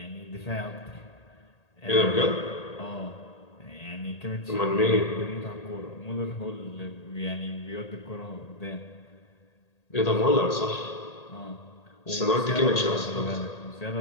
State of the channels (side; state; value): right; late; 1.8 ms